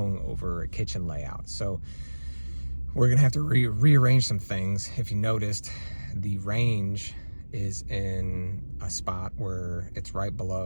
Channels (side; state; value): both; inverted; correlation -1.00